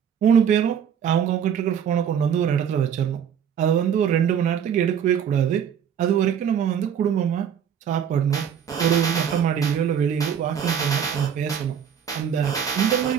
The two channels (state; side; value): quieter; left; 8.3 dB